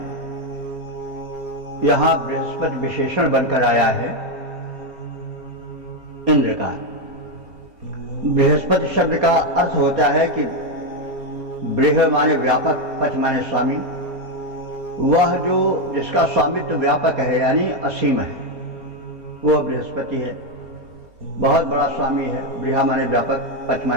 यहाँ बृहस्पति विशेषण बनकर आया है इंद्र का। बृहस्पति शब्द का अर्थ होता है कि बृह माने व्यापक, पच माने स्वामी। वह जो जिसका स्वामित्व व्यापक है यानी असीम है, वह बृहस्पति है। बहुत बड़ा स्वामी है। बृहा माने व्यापक, पच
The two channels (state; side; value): late; left; 4.2 ms